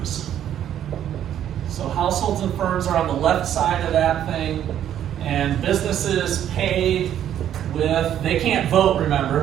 So households and firms are on the left side of that thing, and businesses pay with, they can't vote,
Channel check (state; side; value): quieter; left; 10.6 dB